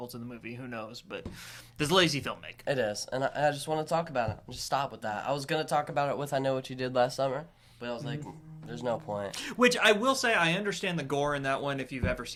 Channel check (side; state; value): both; identical; correlation 1.00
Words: to the movie. Who knows? But there's lazy filmmaking. It is, and I just want to talk about it. Just stop with that. I was gonna talk about it with I Know What You Did Last Summer, but I was like, there's no point. Which I will say, I understand the gore in that one. If you've ever